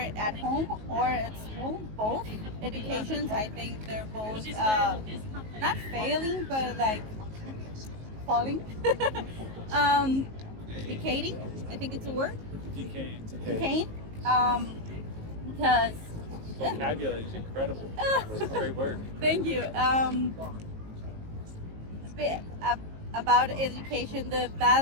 at home or at school, both educations, I think they're both not failing, but like falling, um, decaying. I think it's a word. Decaying. Decaying. Um, because Vocabulary is incredible. It's a great word. thank you. Bit about education, the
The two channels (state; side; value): late; left; 19 ms